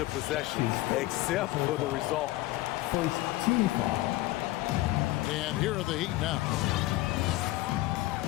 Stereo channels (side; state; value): right; quieter; 18.1 dB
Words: possession, except for the result. First team foul. And here are the Heat now.